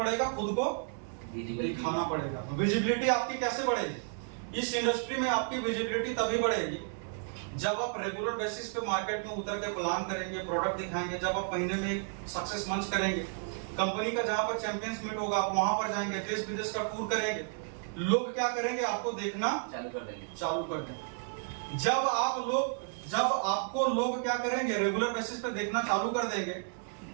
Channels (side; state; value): left; silent; 56 dB below the other